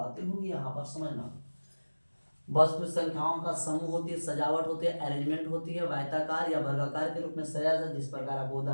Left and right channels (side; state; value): both; inverted; correlation -1.00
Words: होंगी यहाँ पर समझना। वस्तु संख्याओं का समूह होती है, सजावट होती है, अरेंजमेंट होती है, आयताकार या वर्गाकार के रूप में सजाया जाता है। जिस प्रकार आपको